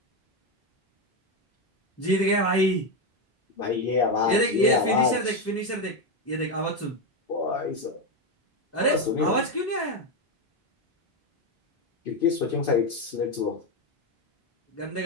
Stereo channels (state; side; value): normal; both; correlation 0.10